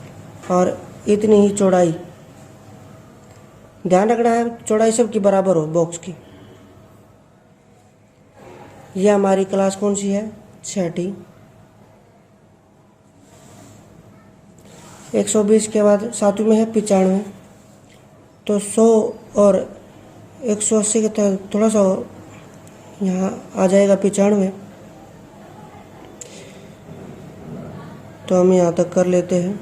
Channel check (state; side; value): identical; both; correlation 1.00